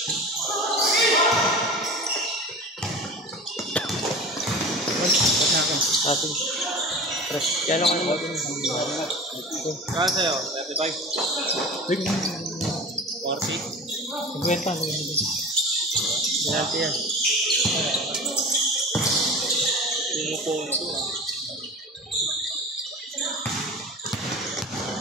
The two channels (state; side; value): normal; both; correlation 0.35